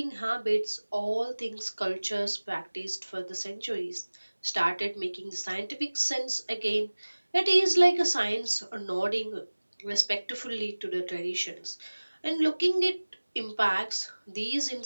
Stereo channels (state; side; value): inverted; both; correlation -1.00